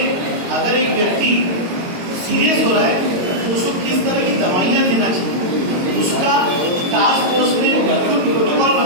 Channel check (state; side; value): late; left; 22 ms